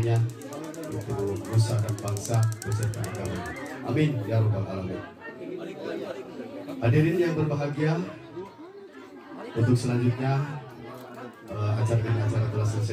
untuk nusa dan bangsa beserta agama. Amin ya rabbal alamin. Hadirin yang berbahagia, untuk selanjutnya acara telah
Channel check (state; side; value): identical; both; correlation 1.00